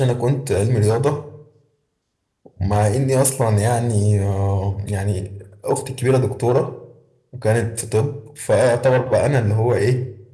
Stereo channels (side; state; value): both; identical; correlation 1.00